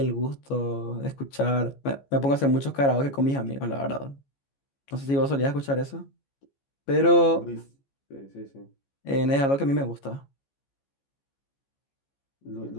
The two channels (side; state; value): right; late; 15 ms